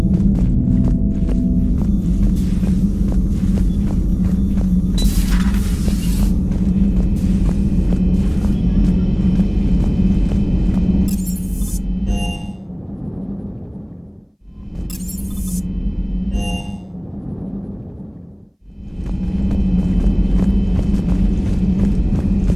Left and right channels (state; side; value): identical; both; correlation 1.00